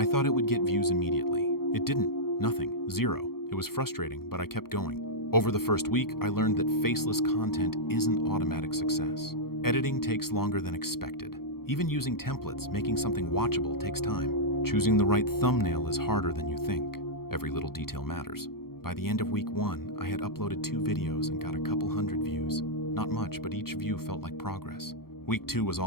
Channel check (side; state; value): right; late; 0.94 ms